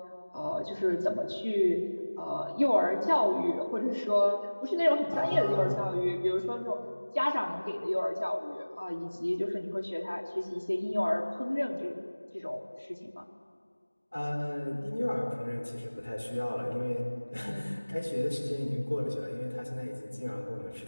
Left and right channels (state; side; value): inverted; both; correlation -1.00